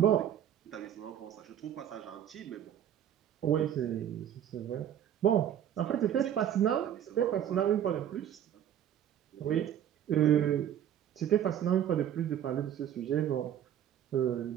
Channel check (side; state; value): left; quieter; 10.2 dB